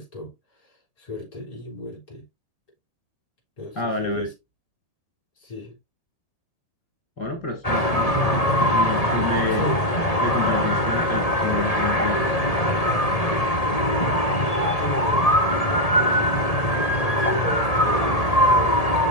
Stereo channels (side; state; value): right; late; 1.8 ms